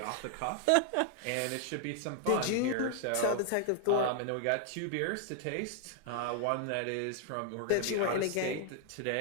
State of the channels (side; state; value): both; different; correlation 0.00